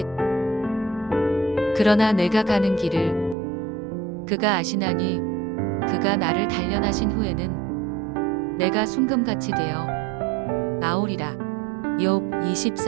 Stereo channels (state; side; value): drops out; left; at 3.4 s